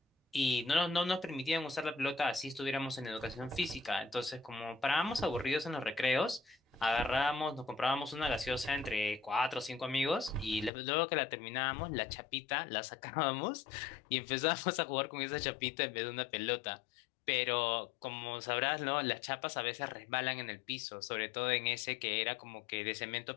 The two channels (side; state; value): right; drops out; at 10.7 s